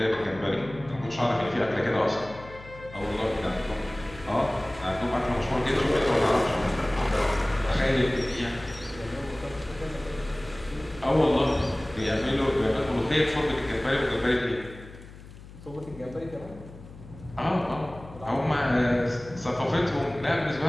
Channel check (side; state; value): left; noise; hum, 17 dB below the sound